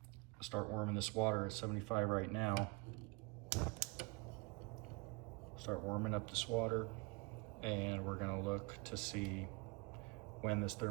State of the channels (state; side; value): quieter; left; 27.9 dB